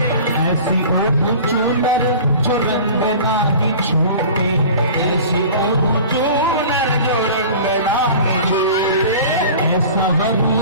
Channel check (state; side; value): inverted; both; correlation -0.40